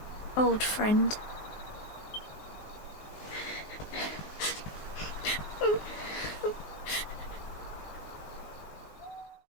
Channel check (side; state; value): right; late; 19 ms